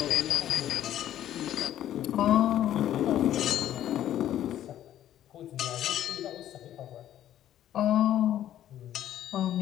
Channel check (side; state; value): right; quieter; 11.8 dB